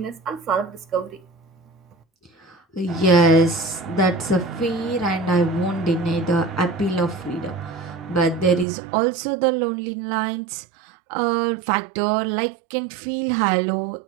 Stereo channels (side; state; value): left; drops out; at 8.7 s